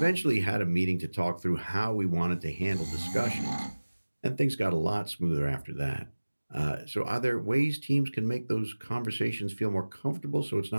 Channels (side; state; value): both; inverted; correlation -1.00